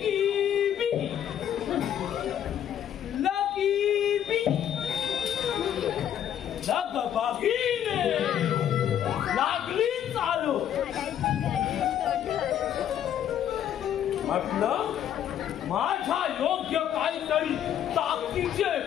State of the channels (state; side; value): quieter; right; 10.1 dB